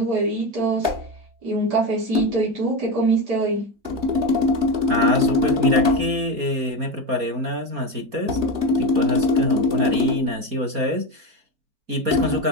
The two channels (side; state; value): left; late; 4.2 ms